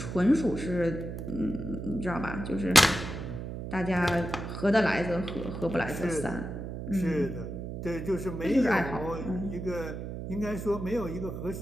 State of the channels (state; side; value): noise; right; hum, 7 dB below the sound